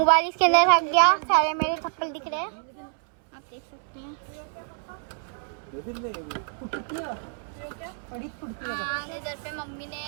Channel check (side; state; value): left; silent; 60 dB below the other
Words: इसके अंदर रख गया, सारे मेरे चप्पल दिख रहे हैं, आप देख सकते हैं। इधर पे मम्मी ने